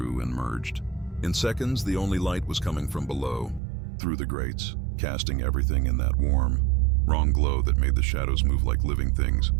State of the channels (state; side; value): drops out; left; at 3.6 s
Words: and merged. In seconds, the only light was coming from below, through the grates, casting everything in that warm, wrong glow that made the shadows move like living things.